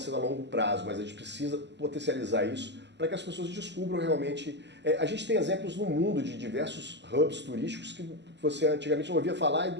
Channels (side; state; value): left; late; 0.51 ms